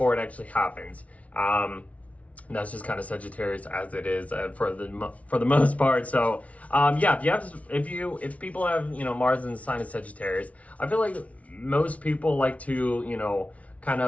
it actually happens. And that's just kind of Sagittarius as it is for the most part. So if people have Mars in the sign of Sagittarius, I feel like most people like to kind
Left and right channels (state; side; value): late; right; 0.066 ms